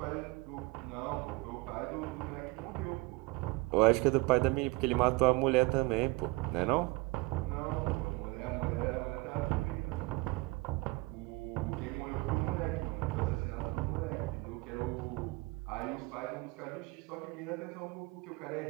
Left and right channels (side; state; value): left; quieter; 23.7 dB